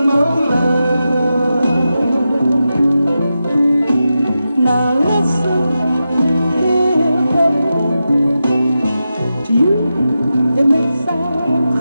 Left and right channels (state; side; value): inverted; both; correlation -0.90